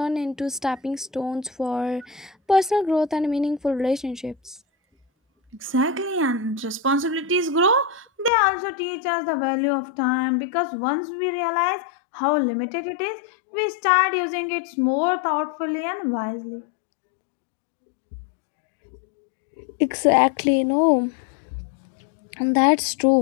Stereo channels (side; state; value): right; drops out; at 8.3 s